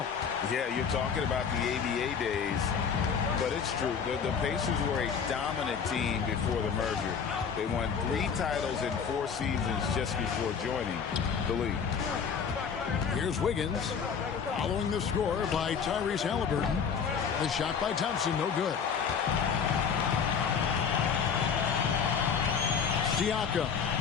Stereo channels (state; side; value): quieter; right; 6.6 dB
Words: Yeah, you're talking about the ABA days, but it's true. The Pacers were a dominant team before the merger. They won 3 titles in 4 seasons just before joining the league. Here's Wiggins, following the score by Tyrese Halliburton. The shot by Thompson, no good. Siakam,